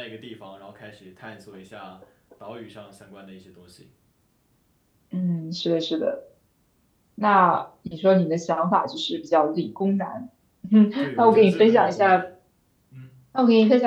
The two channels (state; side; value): identical; both; correlation 1.00